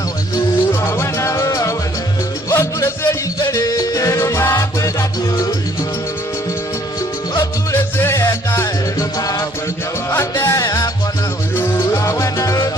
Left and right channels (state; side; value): normal; both; correlation 0.62